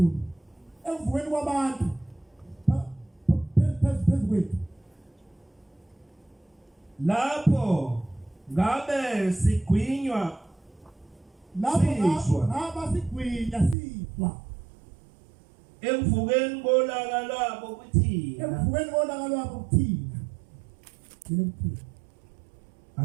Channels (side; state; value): left; drops out; at 13.8 s